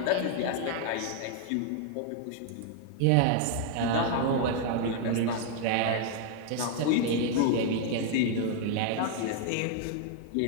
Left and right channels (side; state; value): both; different; correlation 0.00